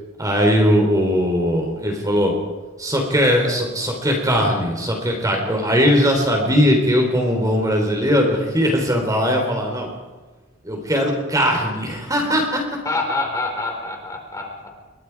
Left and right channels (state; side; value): normal; both; correlation 0.53